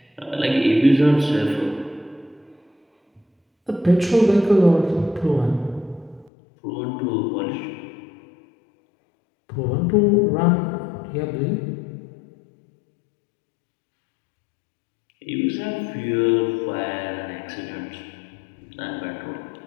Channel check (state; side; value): drops out; right; at 6.3 s